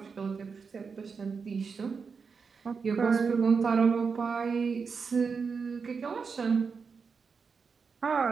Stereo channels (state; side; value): quieter; left; 5.4 dB